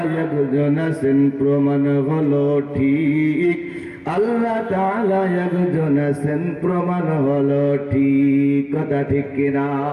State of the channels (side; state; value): both; identical; correlation 1.00